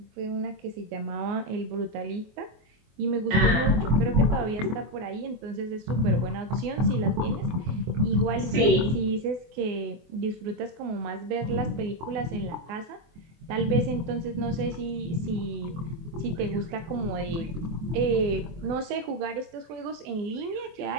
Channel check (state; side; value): late; left; 24 ms